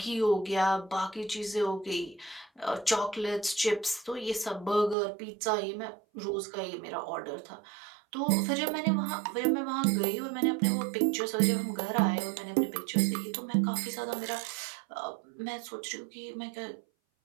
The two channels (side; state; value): left; drops out; at 5.0 s